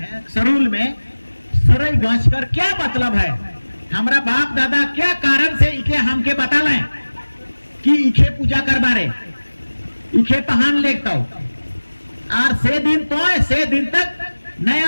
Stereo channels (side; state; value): both; inverted; correlation -1.00